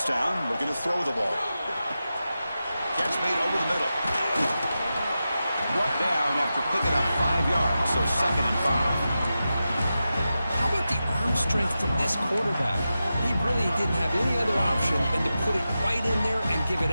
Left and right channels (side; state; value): both; inverted; correlation -0.92